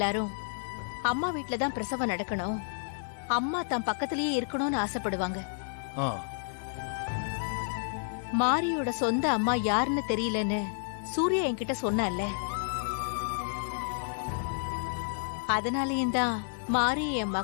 அம்மா வீட்ல தான் பிரசவம் நடக்கணும், அம்மா தான் பக்கத்திலேயே இருக்கணும்னு ஆசைப்படுவாங்க. ஆ, மாரியோட சொந்த அம்மா யாருன்னு தெரியலன்னு சூர்யா என்கிட்ட சொன்னால. அதனாலயும் தான் மாரி என்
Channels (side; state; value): right; silent; digital silence